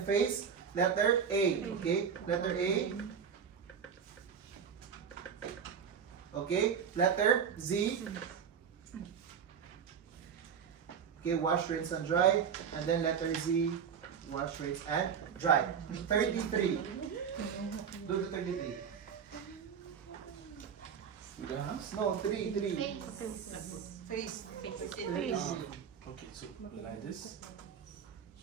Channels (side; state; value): left; quieter; 7.2 dB